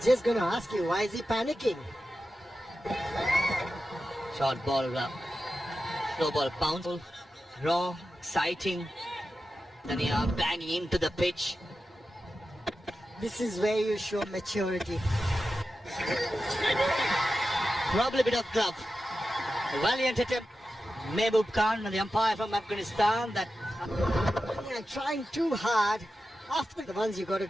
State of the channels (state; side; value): normal; both; correlation 0.92